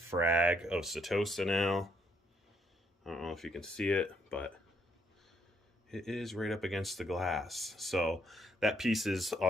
of Setosa now. I don't know if you can see it, but it is right up against the glass. So that piece is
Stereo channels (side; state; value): both; normal; correlation 0.72